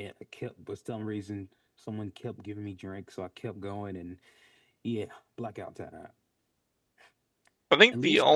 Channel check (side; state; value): both; identical; correlation 1.00